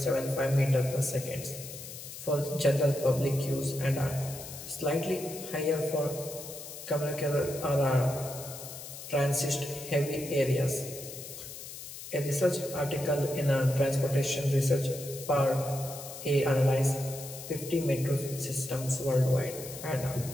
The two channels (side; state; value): left; noise; hiss, 12 dB below the sound